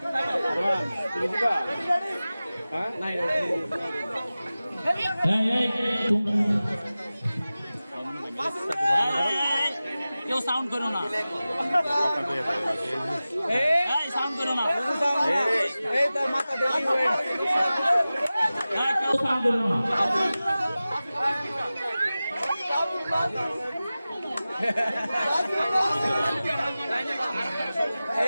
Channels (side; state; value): both; inverted; correlation -0.96